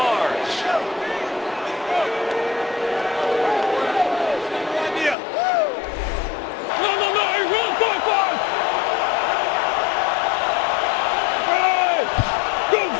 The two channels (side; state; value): right; drops out; at 5.2 s